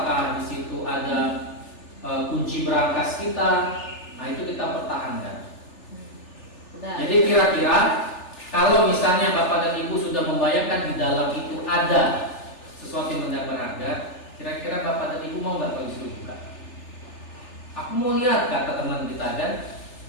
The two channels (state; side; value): late; right; 3.4 ms